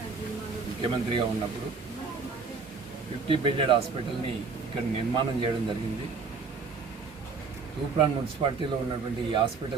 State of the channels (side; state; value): left; quieter; 4.8 dB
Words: ముఖ్యమంత్రిగా ఉన్నప్పుడు 50 బెడెడ్ హాస్పిటల్ని ఇక్కడ నిర్మాణం చేయడం జరిగింది. తూప్రాన్ మున్సిపాలిటీలో ఉన్నటువంటి ఈ